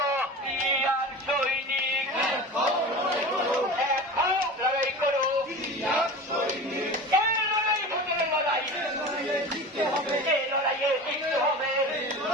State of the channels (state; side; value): normal; both; correlation 0.33